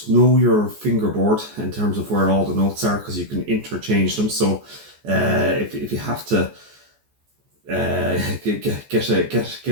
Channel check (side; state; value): left; late; 14 ms